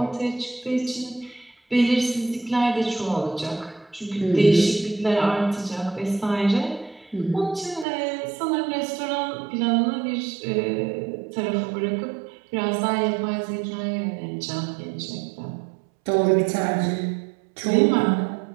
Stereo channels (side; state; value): left; drops out; at 7.9 s